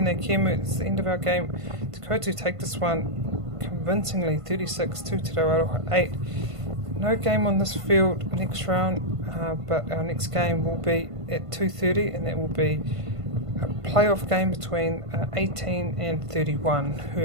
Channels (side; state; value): left; late; 1.5 ms